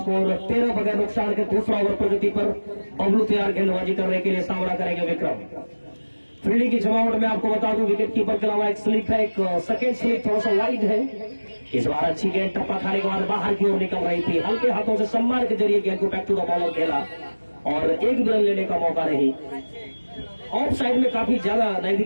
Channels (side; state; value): both; inverted; correlation -1.00